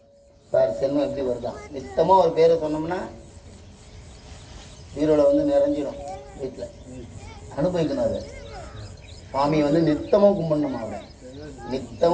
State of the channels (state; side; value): identical; both; correlation 1.00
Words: செல்வம் எப்படி வருதான்? நித்தமா ஒரு பேரை சொன்னோம்னா வீரோட நிறைஞ்சிடும். வீட்டில் அனுபவிக்கணும். அதை சுவாமியை நித்தமும் கும்பிடணும். அவரை